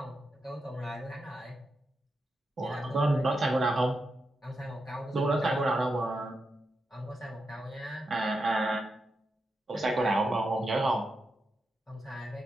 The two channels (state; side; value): normal; both; correlation 0.87